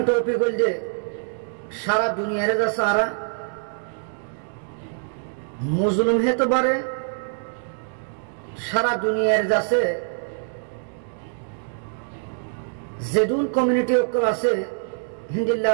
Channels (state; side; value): silent; left; digital silence